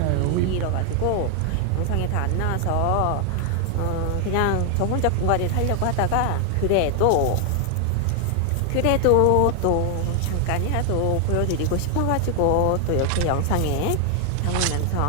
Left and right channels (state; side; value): different; both; correlation 0.00